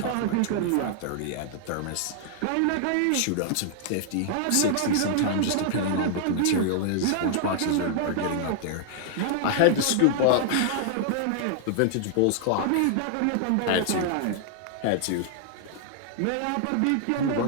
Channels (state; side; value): different; both; correlation -0.01